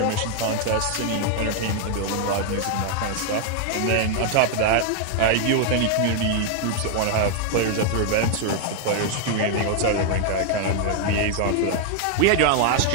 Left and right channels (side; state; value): both; different; correlation 0.00